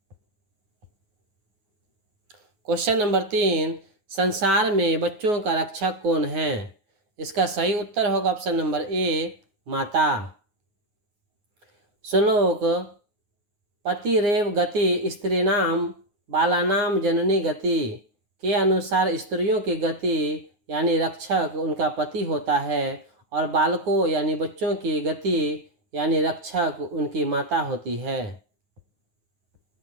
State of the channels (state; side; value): late; left; 9.6 ms